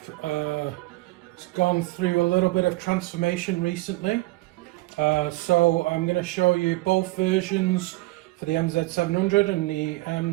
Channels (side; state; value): left; quieter; 20.9 dB